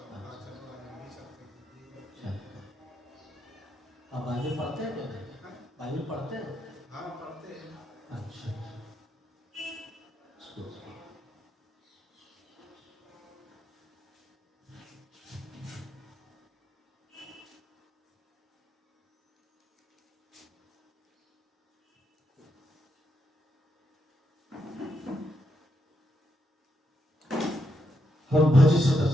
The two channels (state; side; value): normal; both; correlation 0.81